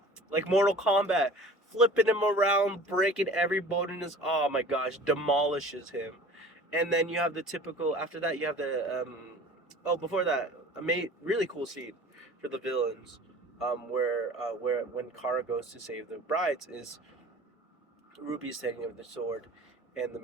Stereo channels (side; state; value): both; normal; correlation 0.43